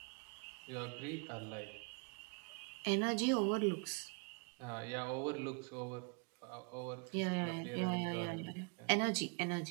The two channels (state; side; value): quieter; left; 34.0 dB